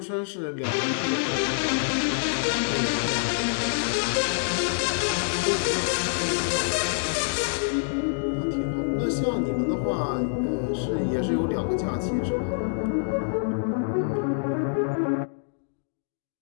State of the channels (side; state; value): right; silent; digital silence